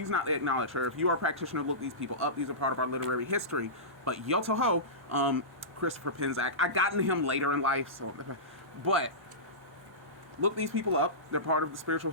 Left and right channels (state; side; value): normal; both; correlation -0.20